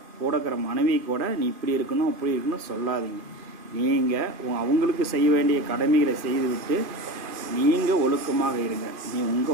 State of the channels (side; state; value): left; late; 2.5 ms